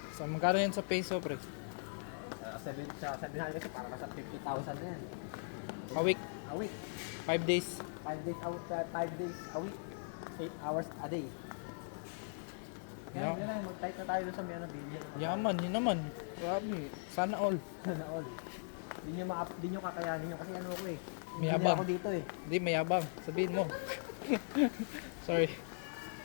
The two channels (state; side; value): silent; right; 52 dB below the other